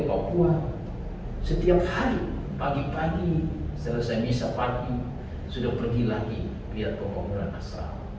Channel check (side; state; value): both; identical; correlation 1.00